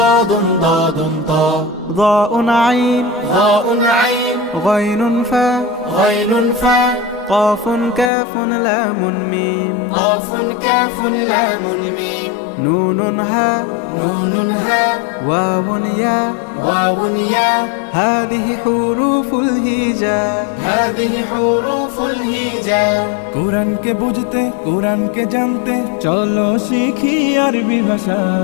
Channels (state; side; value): drops out; right; at 8.1 s